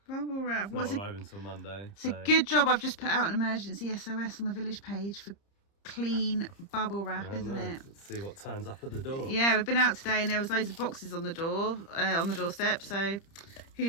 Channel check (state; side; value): late; right; 30 ms